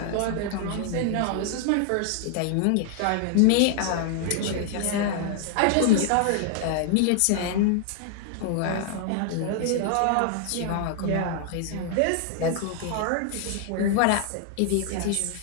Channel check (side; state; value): both; different; correlation 0.00